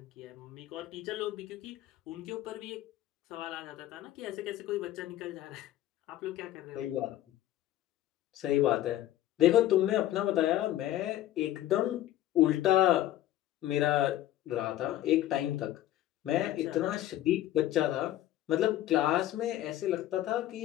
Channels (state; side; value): quieter; right; 13.7 dB